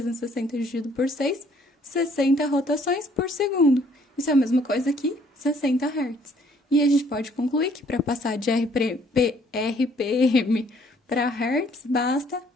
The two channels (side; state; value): both; normal; correlation 0.62